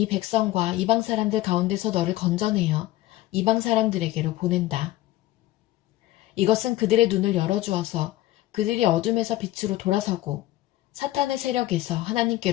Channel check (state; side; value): quieter; right; 15.8 dB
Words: 백성과 이방 사람들 가운데서 너를 건져내어 이방 사람들에게로 보낸다. 이것은 그들의 눈을 열어주어서 그들이 어둠에서 빛으로 돌아서고 사탄의 세력에서